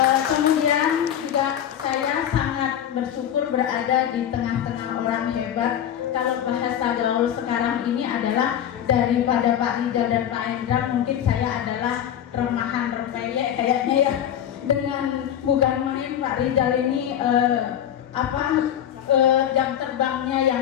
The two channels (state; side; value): quieter; right; 10.1 dB